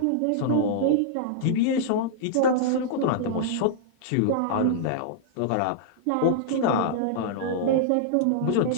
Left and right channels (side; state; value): both; different; correlation -0.02